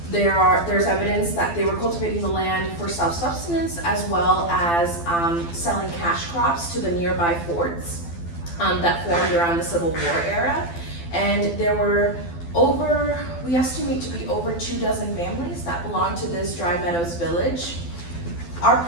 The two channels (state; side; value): late; right; 12 ms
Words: There's evidence that they were cultivating the land for self-sustenance as well as selling cash crops to the nearby forts that formed around the Civil War era. And there were we estimate to be over 24 families that belong to this Dry Meadows Village. Our